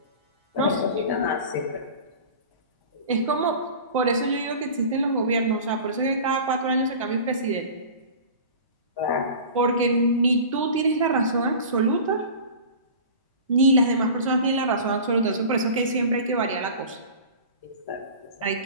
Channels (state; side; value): inverted; both; correlation -0.37